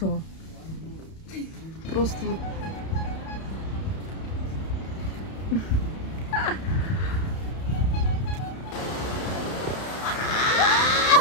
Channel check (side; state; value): right; late; 31 ms